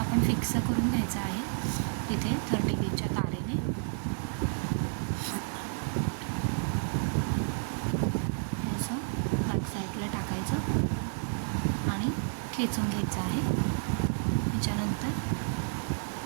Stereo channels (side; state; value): left; silent; 57 dB below the other